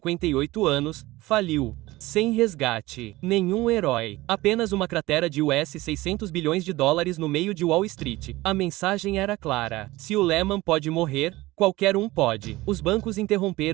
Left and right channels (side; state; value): left; quieter; 19.0 dB